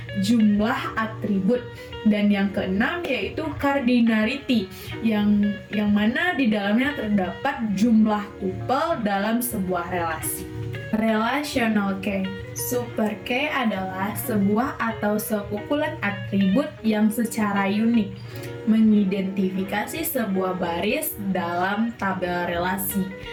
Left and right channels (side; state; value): both; identical; correlation 1.00